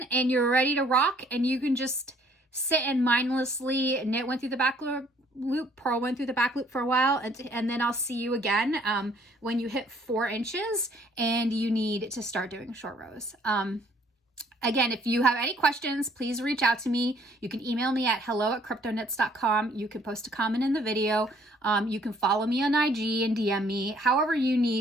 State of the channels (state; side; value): normal; both; correlation 0.61